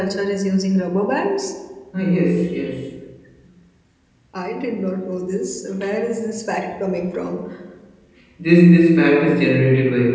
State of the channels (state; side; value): identical; both; correlation 1.00